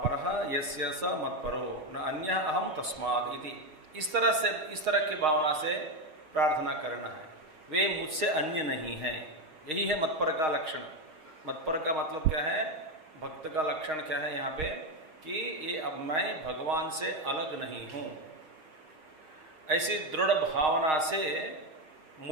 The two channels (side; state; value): left; late; 6.4 ms